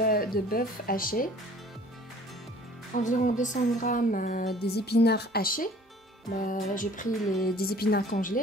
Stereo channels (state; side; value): normal; both; correlation 0.51